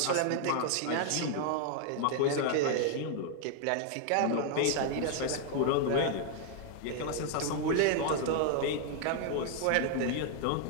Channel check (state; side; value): different; both; correlation 0.00